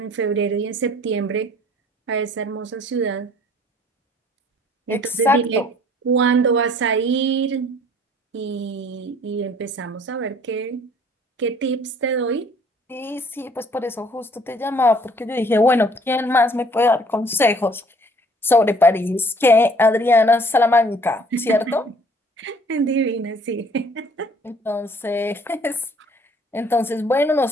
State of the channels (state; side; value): normal; both; correlation 0.57